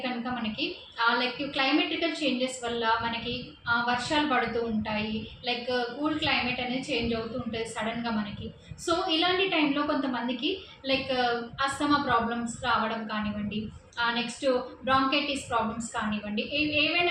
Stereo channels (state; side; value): identical; both; correlation 1.00